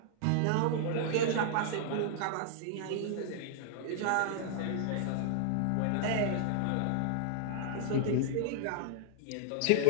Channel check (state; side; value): different; both; correlation -0.01